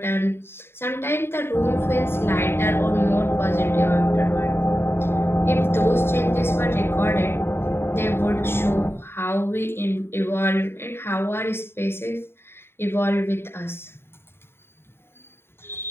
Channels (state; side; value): late; right; 0.11 ms